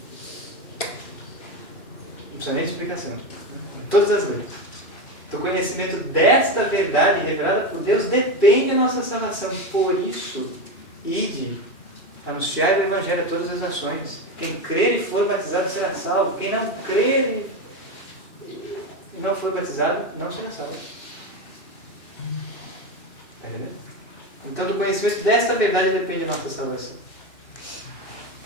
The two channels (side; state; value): right; late; 2.6 ms